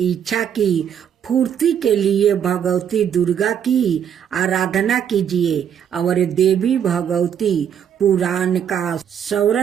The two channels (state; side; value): quieter; left; 8.7 dB